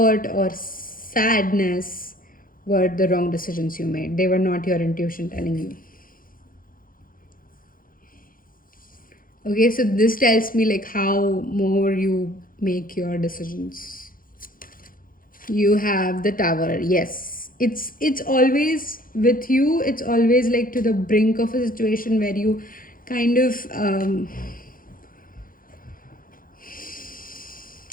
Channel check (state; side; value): late; right; 0.41 ms